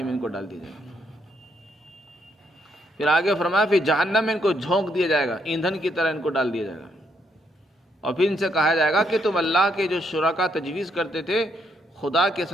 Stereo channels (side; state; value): both; normal; correlation 0.75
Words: میں ان کو ڈال دیا جائے گا. پھر آگے فرمایا پھر جہنم میں ان کو جھونک دیا جائے گا، ایندھن کی طرح ان کو ڈال دیا جائے گا. اور پھر ان سے کہا جائے گا کہ تم اللہ کے جو شرکا تجویز کرتے تھے، خدا کے